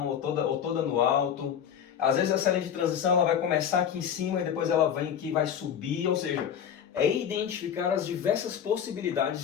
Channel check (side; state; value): right; quieter; 8.6 dB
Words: ou toda no alto. Às vezes essa linha de transição ela vai começar aqui em cima e depois ela vem aqui e vai subir, ou seja, é identificar as diversas